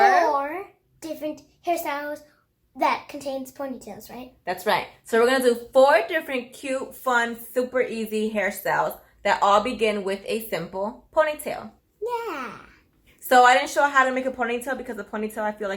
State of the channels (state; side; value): identical; both; correlation 1.00